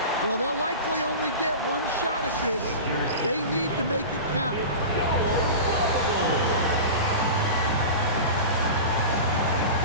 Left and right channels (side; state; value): both; inverted; correlation -0.30